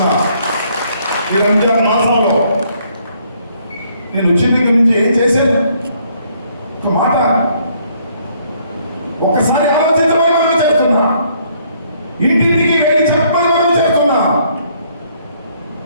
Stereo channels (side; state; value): both; inverted; correlation -0.66